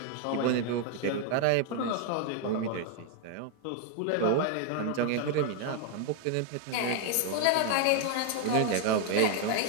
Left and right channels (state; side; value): different; both; correlation 0.00